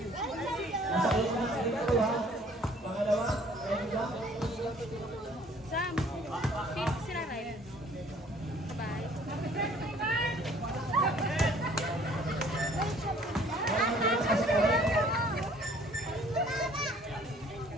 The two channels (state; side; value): normal; both; correlation 0.56